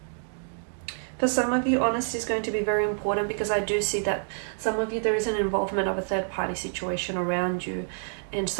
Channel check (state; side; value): silent; left; digital silence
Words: For some of you, honesty is going to be very important, because I do see that some of you, there is an involvement of a third-party situation around you. And